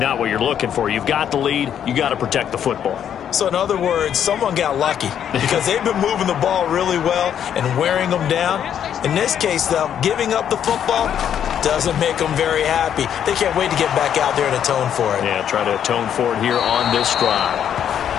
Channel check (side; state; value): right; quieter; 9.2 dB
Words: what you're looking for. You've got the lead. You got to protect the football. So in other words, someone got lucky because they've been moving the ball really well and wearing them down. In this case, though, giving up the football doesn't make them very happy. They can't wait to get back out there and atone for it. Yeah, try to atone for it here on this drive.